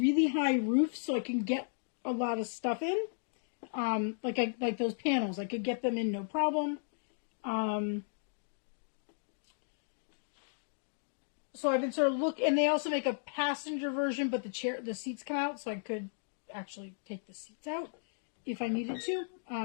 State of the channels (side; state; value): right; silent; digital silence